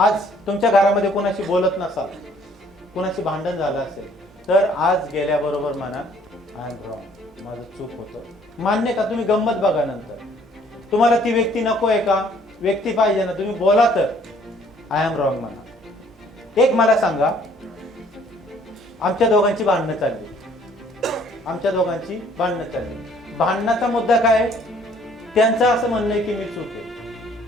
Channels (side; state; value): both; normal; correlation 0.60